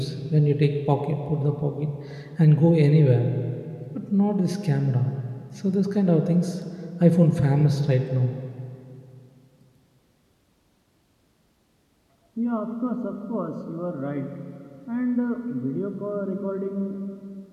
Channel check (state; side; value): identical; both; correlation 1.00